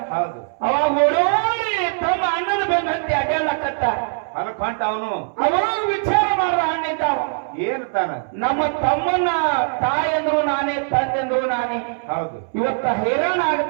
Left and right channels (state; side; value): silent; left; 64 dB below the other